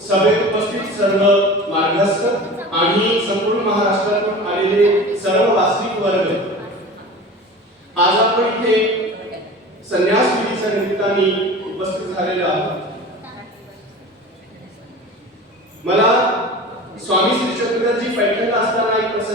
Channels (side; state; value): both; normal; correlation 0.36